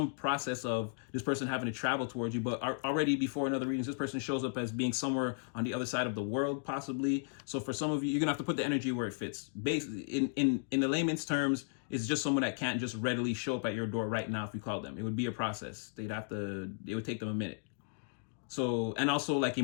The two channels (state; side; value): silent; right; digital silence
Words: process of this person having to travel towards you, but already before in other readings, this person shows up as being somewhere on the other side of the world, possibly. So for some of you, you're gonna have to put the energy where it fits. Basically, in the layman's terms, it's just someone that can't just readily show up at your door right now if you call them. It would be a process. It would take them a minute. So, and also like